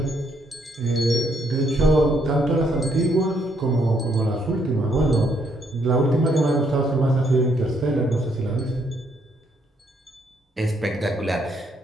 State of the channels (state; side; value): normal; both; correlation 0.72